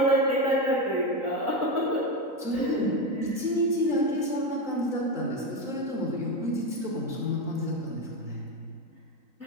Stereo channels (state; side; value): late; left; 3.9 ms